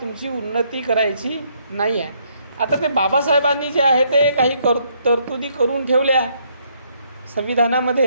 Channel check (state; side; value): inverted; both; correlation -0.70